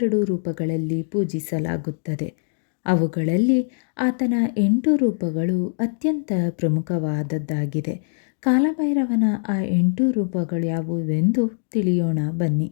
ರೂಪಗಳಲ್ಲಿ ಪೂಜಿಸಲಾಗುತ್ತದೆ. ಅವುಗಳಲ್ಲಿ ಆತನ 8 ರೂಪಗಳು ಅತ್ಯಂತ ಪ್ರಮುಖವಾದದ್ದಾಗಿದೆ. ಕಾಲಭೈರವನ ಆ 8 ರೂಪಗಳು ಯಾವುವೆಂದು ತಿಳಿಯೋಣ ಬನ್ನಿ.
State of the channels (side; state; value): right; silent; digital silence